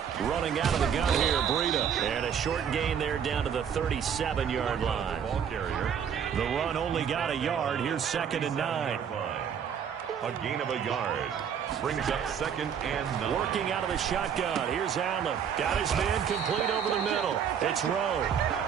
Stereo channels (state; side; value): quieter; left; 7.9 dB